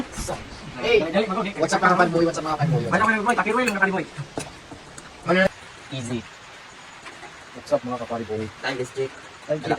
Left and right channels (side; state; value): both; identical; correlation 1.00